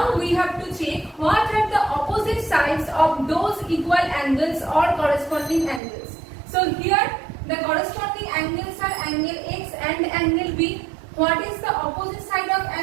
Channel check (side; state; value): left; drops out; at 5.8 s